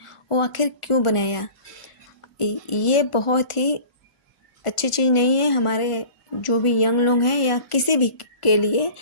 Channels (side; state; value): right; late; 1.4 ms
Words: वो आखिर क्यों बनाया। ये बहुत ही अच्छी चीज़ नहीं है हमारे जो भी यंग लोग हैं या किसी भी के लिए।